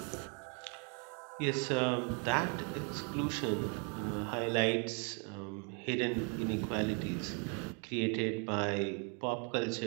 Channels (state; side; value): quieter; left; 37.5 dB